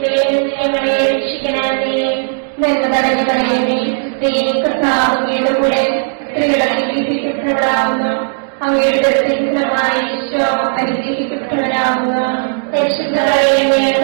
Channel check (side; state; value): left; silent; digital silence